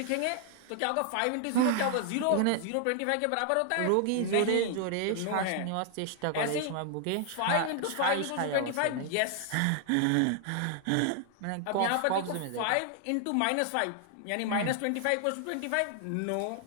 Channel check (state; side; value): different; both; correlation 0.00